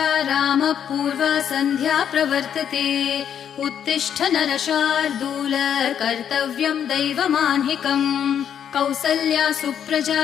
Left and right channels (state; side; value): quieter; right; 8.8 dB